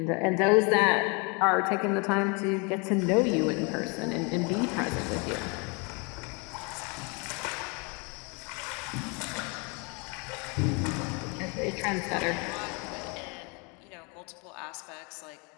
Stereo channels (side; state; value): right; quieter; 31.9 dB